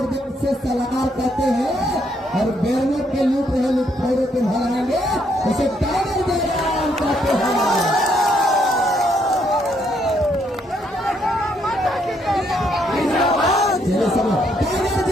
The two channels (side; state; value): both; normal; correlation 0.73